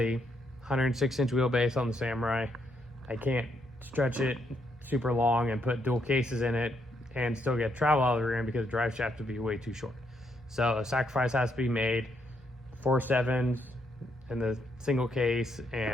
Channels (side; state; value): both; normal; correlation 0.76